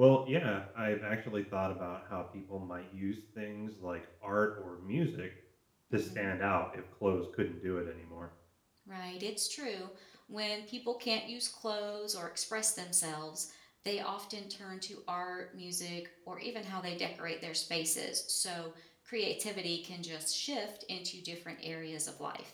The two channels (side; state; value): both; identical; correlation 1.00